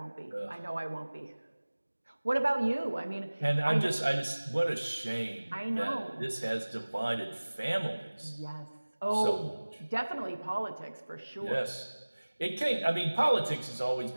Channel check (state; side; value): inverted; both; correlation -1.00